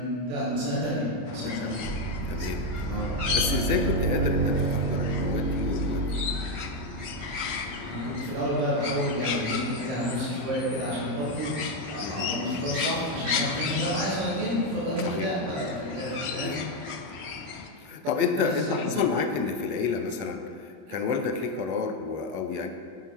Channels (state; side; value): late; left; 26 ms